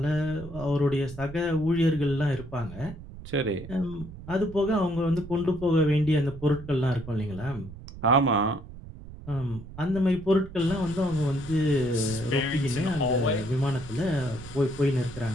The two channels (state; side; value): noise; right; rumble, 14 dB below the sound